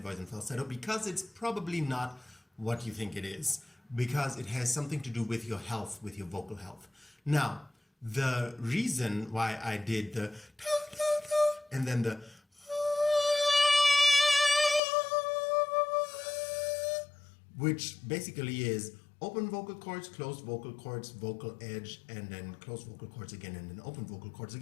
and falsetto, because it's probably not what you think it is, because it has something to do with your health, with your vocal health. Now, the reason why I did the and then the which basically is open vocal cords, closed vocal cords, vocal edge, and then closed vocal cords again, and then open vocal cords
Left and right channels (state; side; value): drops out; right; at 14.8 s